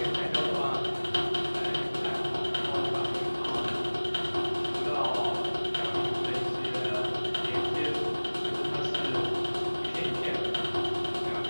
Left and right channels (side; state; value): both; inverted; correlation -1.00